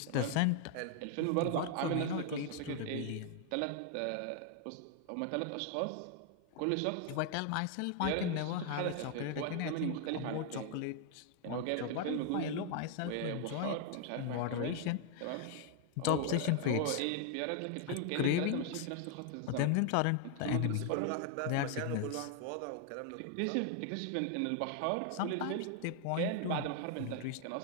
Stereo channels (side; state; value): both; different; correlation 0.00